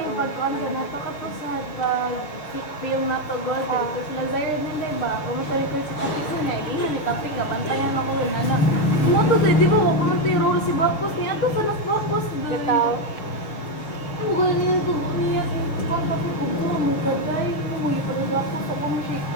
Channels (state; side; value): late; right; 6.5 ms